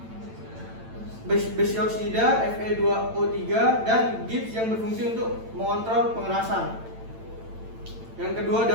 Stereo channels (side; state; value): left; late; 8.9 ms